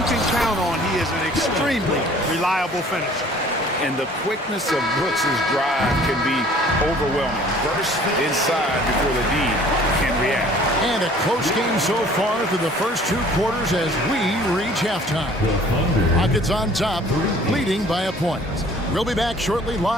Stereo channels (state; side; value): normal; both; correlation 0.52